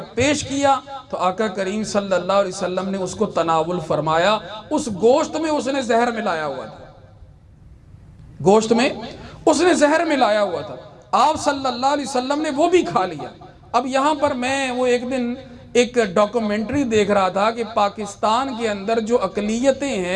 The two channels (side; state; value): both; identical; correlation 1.00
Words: پیش کیا تو آقا کریم صلی اللہ علیہ وسلم نے اس کو تناول فرمایا۔ اس گوشت میں اس نے زہر ملایا ہوا تھا، گوشت میں اس نے زہر ملایا ہوا تھا، آپ صلی اللہ علیہ وسلم نے وہ بھی کھا لیا۔ اب یہاں پر میں وہ ایک دن ایک ڈاکومنٹری دیکھ رہا تھا کہ پاکستان کے اندر جو اقلیتیں